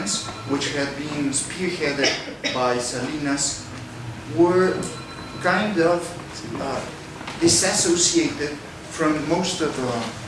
which had been spearheaded by Salinas, were kind of disassociated from most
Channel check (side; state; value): both; identical; correlation 1.00